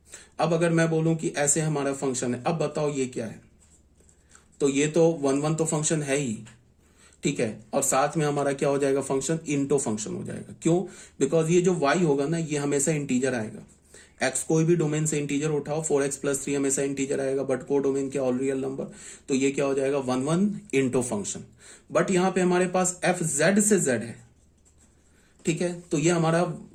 अब अगर मैं बोलूं कि ऐसे हमारा फंक्शन है, अब बताओ ये क्या है, तो ये तो 1 1 तो फंक्शन है ही, ठीक है, और साथ में हमारा क्या हो जाएगा, फंक्शन इंटो फंक्शन हो जाएगा। क्यों, बिकॉज ये जो y होगा ना, ये हमेशा इंटीजर आएगा। x कोई भी डोमेन से इंटीजर उठाओ, 4x + 3 हमेशा इंटीजर आएगा, बट को डोमेन क्या, ऑल रियल नंबर। तो ये क्या हो जाएगा, 1 1 इंटो फंक्शन। बट यहां पे हमारे पास f z से z है, ठीक है, तो ये हमारा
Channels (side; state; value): both; identical; correlation 1.00